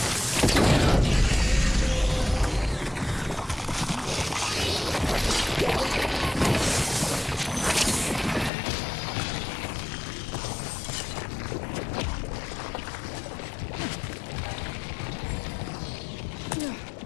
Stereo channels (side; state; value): right; drops out; at 8.5 s